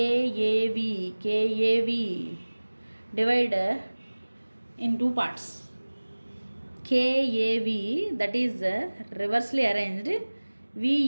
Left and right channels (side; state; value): both; inverted; correlation -1.00